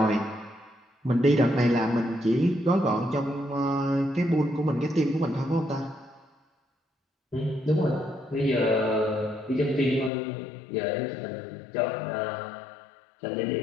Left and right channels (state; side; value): drops out; right; at 10.1 s